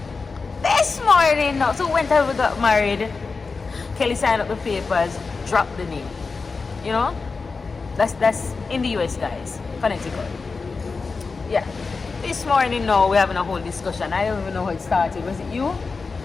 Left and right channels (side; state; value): right; quieter; 4.4 dB